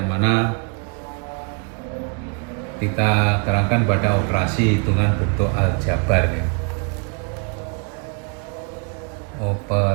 mana kita terangkan pada operasi hitungan bentuk aljabar.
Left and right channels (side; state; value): left; quieter; 35.8 dB